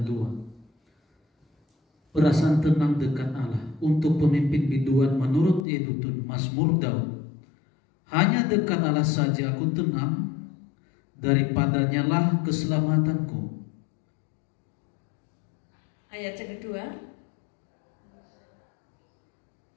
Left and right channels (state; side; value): drops out; right; at 5.7 s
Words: 2. Perasaan tenang dekat Allah untuk pemimpin biduan menurut Yedutun Mazmur Daud. Hanya dekat Allah saja aku tenang, daripadanya lah keselamatanku. Ayat yang kedua.